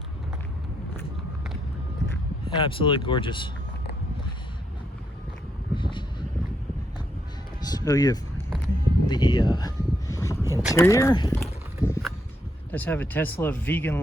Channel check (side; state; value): both; normal; correlation 0.77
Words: Absolutely gorgeous. So you have the interior. Does have a Tesla